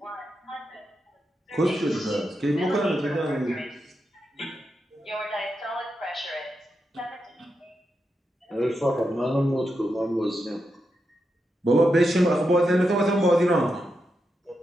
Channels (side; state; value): both; normal; correlation 0.86